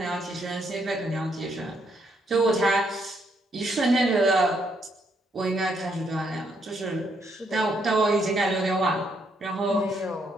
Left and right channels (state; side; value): normal; both; correlation 0.74